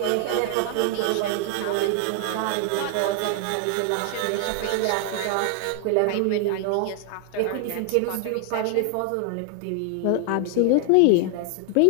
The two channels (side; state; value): both; different; correlation 0.00